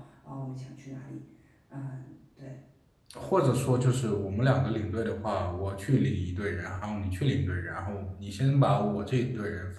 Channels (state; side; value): identical; both; correlation 1.00